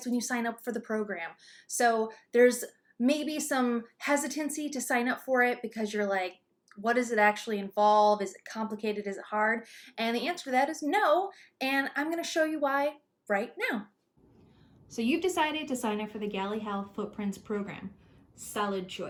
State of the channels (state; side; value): identical; both; correlation 1.00